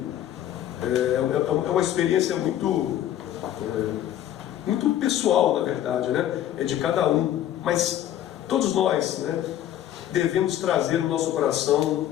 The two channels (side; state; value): right; quieter; 11.7 dB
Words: É uma experiência muito pessoal, na verdade, né? É de cada um, mas todos nós, né, devemos trazer no nosso coração